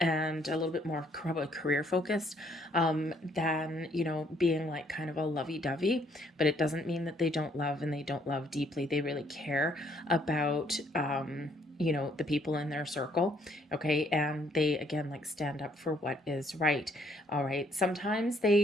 and a little bit more probably career focused than, being like kind of a lovey-dovey. But it doesn't mean that they don't love and they don't love deeply. They really care about you know, the people in their circle, okay, and they again like stand up for what is right. All right, sometimes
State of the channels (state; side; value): normal; both; correlation 0.67